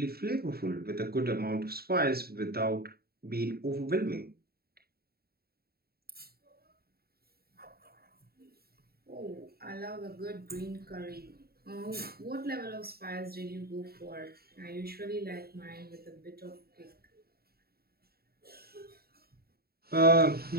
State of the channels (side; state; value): left; late; 0.45 ms